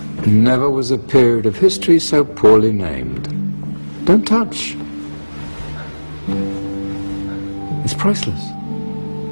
Never was a period of history so poorly named. Don't touch. It's priceless.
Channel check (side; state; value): both; inverted; correlation -1.00